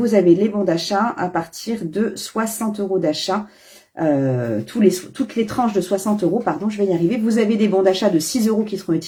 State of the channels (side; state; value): both; identical; correlation 1.00